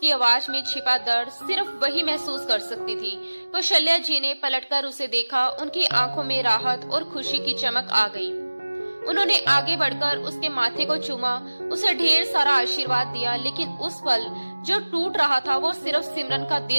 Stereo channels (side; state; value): both; inverted; correlation -1.00